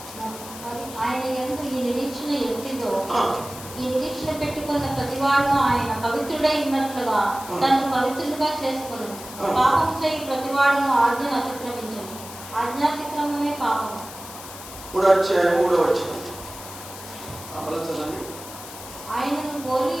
మరి ఆయన యందు ఈ నిరీక్షణ ఎట్టిదో, ఈ నిరీక్షణ పెట్టుకున్న ప్రతివాడు ఆయన పవిత్రుడై ఉన్నట్లుగా తను పవిత్రుడుగా చేసుకును. పాపము చేయి ప్రతివాడును ఆజ్ఞను అతిక్రమించను. ఆజ్ఞాతిక్రమమే పాపము. 3వ అధ్యాయం 3వ వచనం చదవండి. ఆయనను పోలి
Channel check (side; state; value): left; noise; hiss, 14 dB below the sound